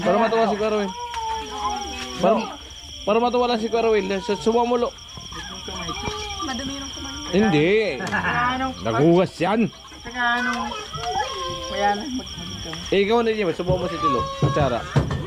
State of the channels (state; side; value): identical; both; correlation 1.00